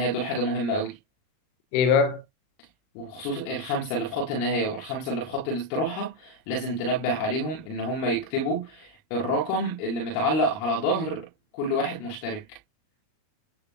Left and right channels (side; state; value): right; late; 38 ms